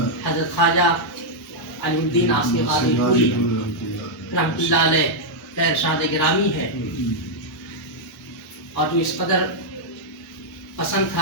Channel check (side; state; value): both; normal; correlation -0.05